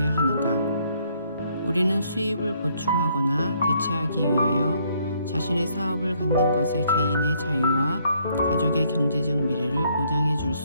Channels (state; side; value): inverted; both; correlation -0.69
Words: 하는가? 우리는 수입을 보충하거나 대체하기 위하여 자신의 사업을 갖는 것에 개인의 자유와 가족의 경제적 미래를 보장해 줄